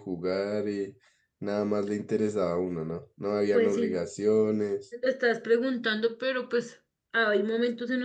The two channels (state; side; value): identical; both; correlation 1.00